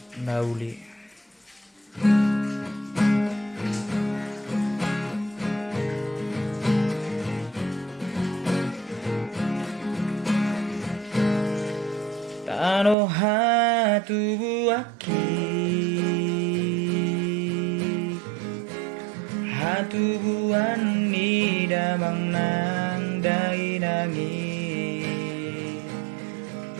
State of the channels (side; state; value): left; drops out; at 13.0 s